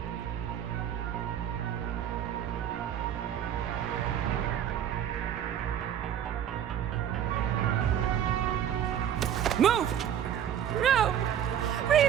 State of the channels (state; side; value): quieter; left; 9.8 dB